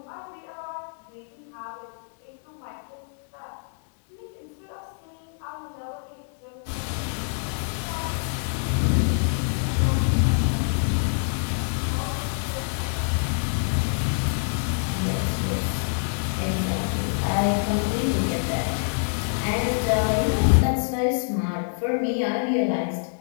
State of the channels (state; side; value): silent; right; digital silence